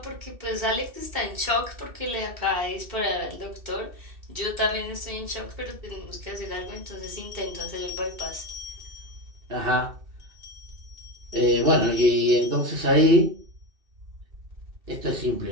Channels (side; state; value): left; late; 2.6 ms